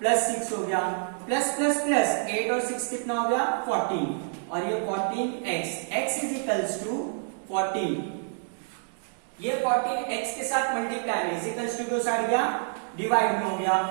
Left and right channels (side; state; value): left; silent; digital silence